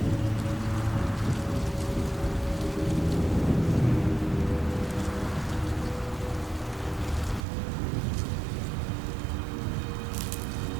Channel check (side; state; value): left; drops out; at 7.5 s